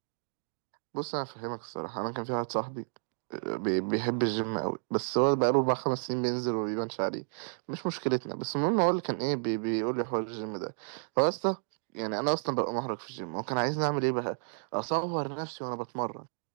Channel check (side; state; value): left; silent; digital silence